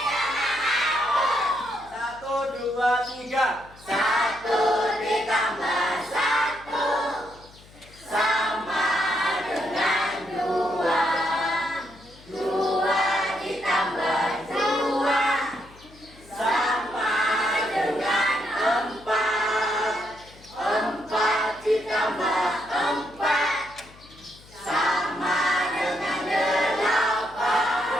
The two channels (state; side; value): noise; left; hum, 23 dB below the sound